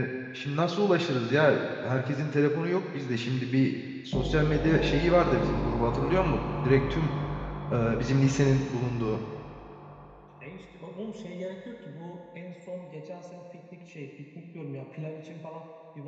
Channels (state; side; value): identical; both; correlation 1.00